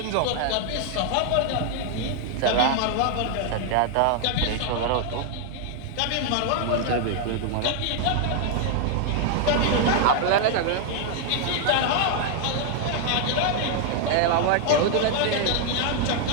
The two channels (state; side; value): different; both; correlation 0.00